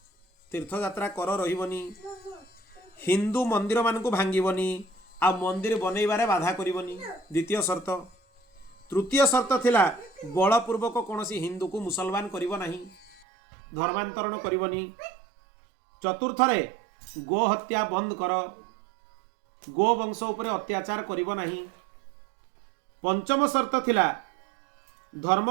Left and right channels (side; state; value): left; drops out; at 13.2 s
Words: तीर्थ यात्रा कर रही हिंदू मंदिर मान भांगीबनी आ मंदिर बनइबारे बाधा करिबनी द्वितीय शर्त। तृतीय शर्त थिला बलपूर्वक कौनसी हिंदू को मुसलमान करिब नाही, धर्मांतरण करिबनी। चतुर्थ रे गो हत्या बंद कर, गो वंश उपरे अत्याचार करिब नाही। पंचम शर्त थिला